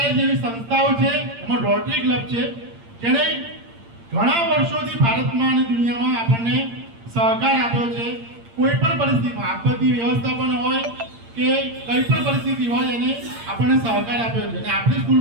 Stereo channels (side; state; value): left; late; 8.7 ms